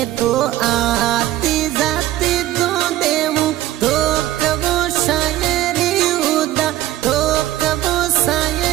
तो आती जाती दो देवूं तो कबो शायरी उदा, तो कबो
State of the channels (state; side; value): quieter; left; 14.5 dB